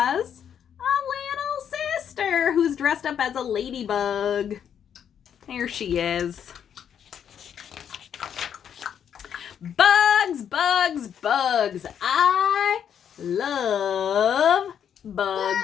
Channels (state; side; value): quieter; right; 8.6 dB